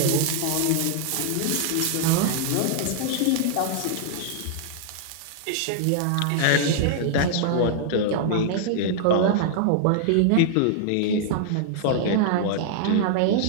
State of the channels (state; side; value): different; both; correlation -0.01